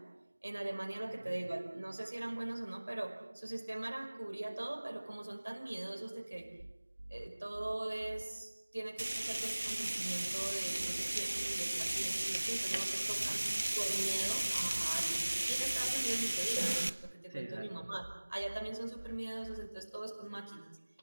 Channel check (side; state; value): both; inverted; correlation -1.00